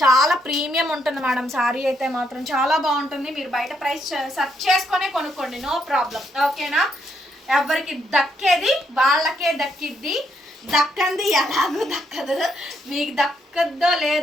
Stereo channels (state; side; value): normal; both; correlation 0.75